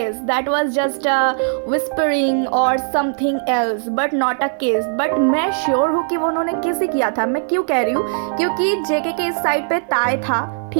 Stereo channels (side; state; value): left; silent; 58 dB below the other